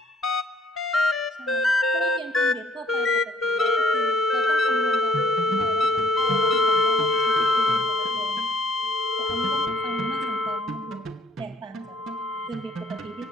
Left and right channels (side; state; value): both; normal; correlation 0.60